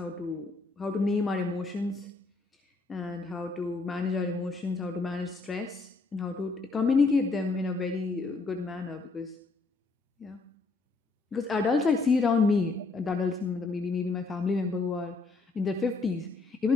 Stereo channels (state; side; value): quieter; right; 3.7 dB